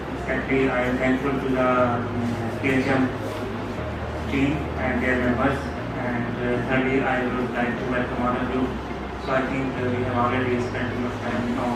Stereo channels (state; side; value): identical; both; correlation 1.00